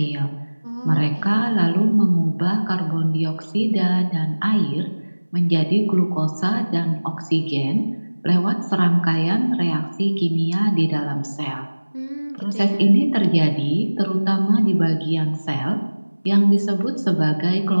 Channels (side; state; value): both; inverted; correlation -1.00